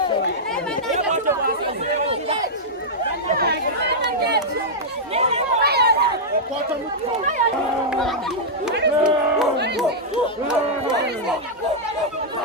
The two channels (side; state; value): both; normal; correlation -0.08